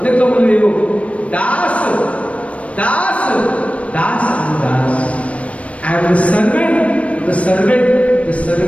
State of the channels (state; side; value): late; right; 0.064 ms